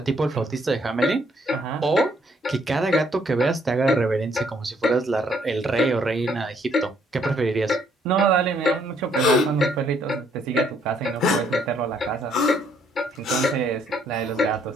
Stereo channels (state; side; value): normal; both; correlation 0.68